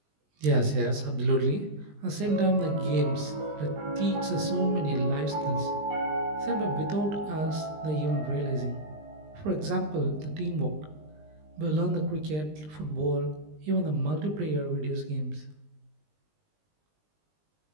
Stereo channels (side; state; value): left; late; 20 ms